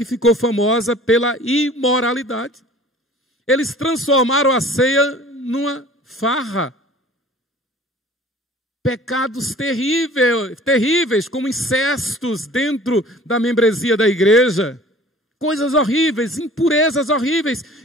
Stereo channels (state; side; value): normal; both; correlation 0.47